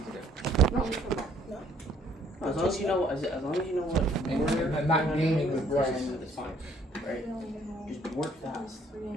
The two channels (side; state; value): both; normal; correlation 0.62